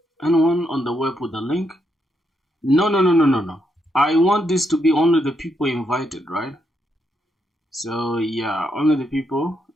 on the web with the link? No. I want this to be only the people invited, right? So yeah, only the people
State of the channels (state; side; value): normal; both; correlation 0.79